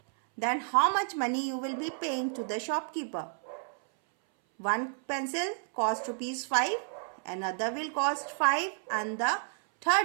Then how much money you will be paying to the shopkeeper? One pencil cost rupees 5, another will cost 5 and the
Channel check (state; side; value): silent; left; 57 dB below the other